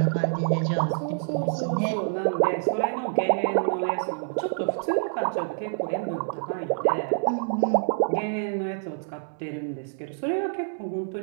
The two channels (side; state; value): left; silent; digital silence